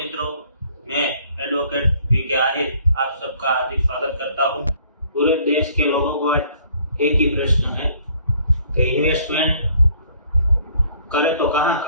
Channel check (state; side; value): inverted; both; correlation -0.59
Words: मैं एडवोकेट वीके आहिर आप सबका हार्दिक स्वागत करता हूं। पूरे देश के लोगों को एक ही प्रश्न है कि इन्वेस्टमेंट करें तो कहां